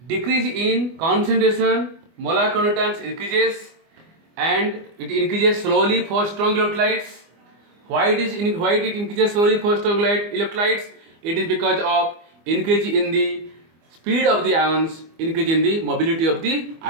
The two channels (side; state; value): left; late; 24 ms